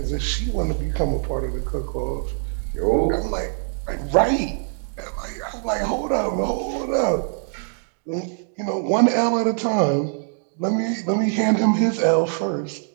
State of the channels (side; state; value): left; silent; 58 dB below the other